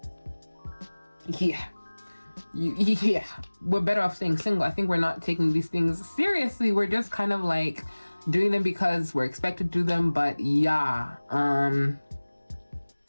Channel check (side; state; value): both; inverted; correlation -1.00